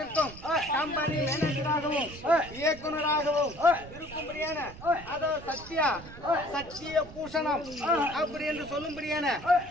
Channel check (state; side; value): noise; right; rumble, 16 dB below the sound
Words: கம்பெனி மேனேஜராகவும் இயக்குநராகவும் இருக்கும்படியான அதாவது சத்திய பூஷணம் அப்படி என்று சொல்லும்படியான